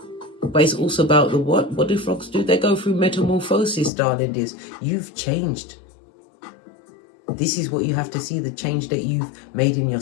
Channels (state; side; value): drops out; right; at 3.9 s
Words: But it's also about the what? What do frogs do? They go through metamorphosis, darling dears. You've changed. This is what you have to see, the change that you've made in